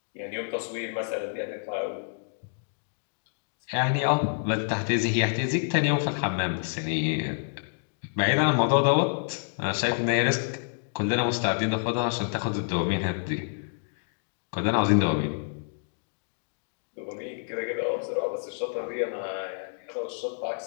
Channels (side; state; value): right; silent; digital silence